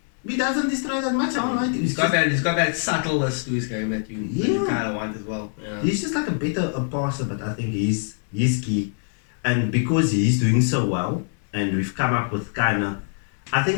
He doesn't destroy that much. I don't like it. He's got that subtleness to his game that you kind of want as well. Yeah. He's just like a better passer, but I think he's key. And because he's doing so well, and we've come up with I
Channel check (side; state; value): right; silent; 63 dB below the other